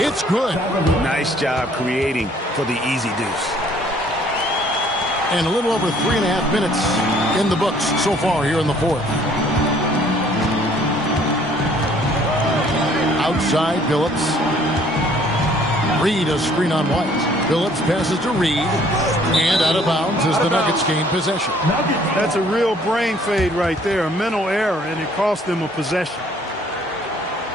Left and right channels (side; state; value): both; normal; correlation 0.60